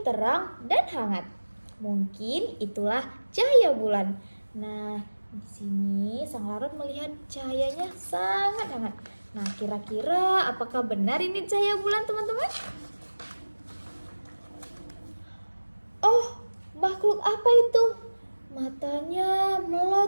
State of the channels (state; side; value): inverted; both; correlation -1.00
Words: dan hangat. Mungkin itulah cahaya bulan. Nah, di sini sang laron melihat cahayanya sangat hangat. Nah, kira-kira apakah benar ini cahaya bulan, teman-teman? Oh, makhluk apa itu? Matanya